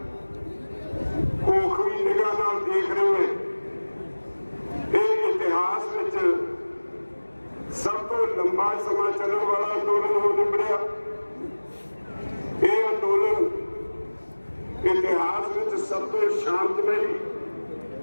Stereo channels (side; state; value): both; inverted; correlation -1.00